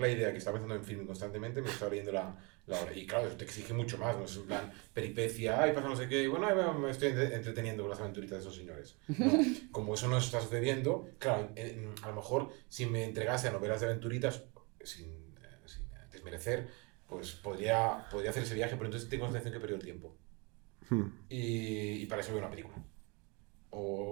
idea que estaba pensando en film constantemente, me estaba leyendo la obra. Y claro, eso te exige mucho más, no es en plan peripecia, ay, pasa no sé qué, y bueno, me estoy entreteniendo con las aventuritas de esos señores. No, como eso no está sucediendo, claro, a lo mejor si me entregase a novelas de aventuritas, sin desmerecer, pues podría hacer ese viaje, pero entonces tengo la sensación que he perdido el tiempo. hmm. Y para eso veo una película.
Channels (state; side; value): quieter; left; 30.1 dB